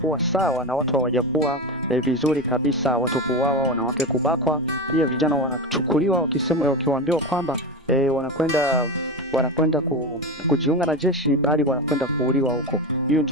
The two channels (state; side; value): normal; both; correlation 0.20